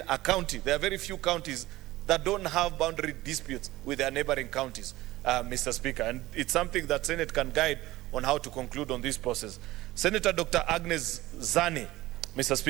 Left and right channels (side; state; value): left; quieter; 17.6 dB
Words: a county. There are very few counties that don't have boundary disputes with their neighboring counties, Mr. Speaker, and it's something that Senate can guide on how to conclude on this process. Senator Dr. Agnes Zani, Mr.